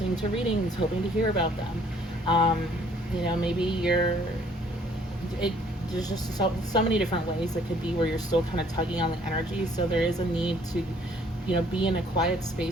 to readings, hoping to hear about them. You know, maybe there's just so many different ways it could be where you're still kind of tugging on the energy. So there is a need to, you know, be in a quiet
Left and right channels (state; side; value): normal; both; correlation 0.60